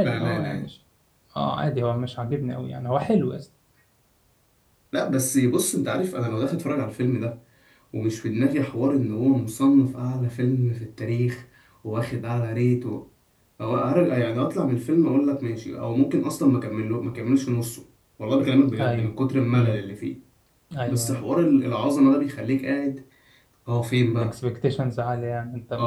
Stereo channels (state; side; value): identical; both; correlation 1.00